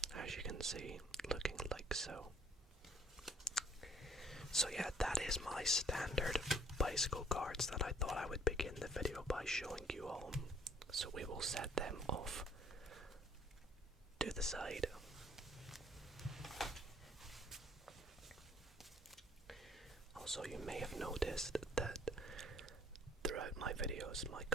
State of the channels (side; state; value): both; normal; correlation 0.59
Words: as you can see, looking like so. So yeah, that is my standard bicycle cards that I thought I would begin the video by showing you all. So we will set them off to the side. Also, you may have noticed that throughout my videos, my